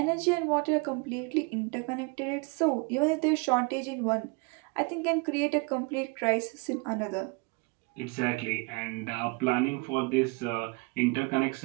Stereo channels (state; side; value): quieter; left; 29.5 dB